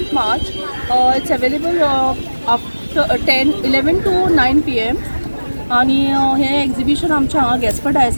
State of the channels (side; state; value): both; inverted; correlation -1.00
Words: March. It's available after 11 to 9 PM. आणि हे एक्झिबिशन आमच्या हांगा गॅस्पर